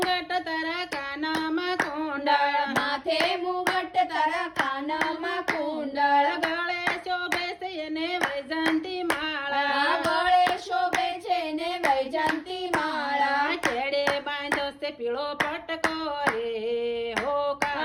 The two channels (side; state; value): both; identical; correlation 1.00